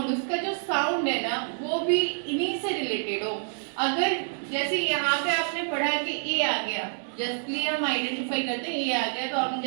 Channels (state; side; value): silent; left; digital silence